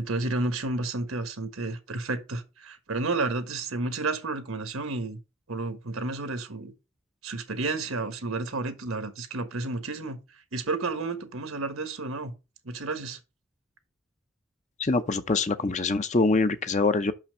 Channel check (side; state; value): both; normal; correlation 0.38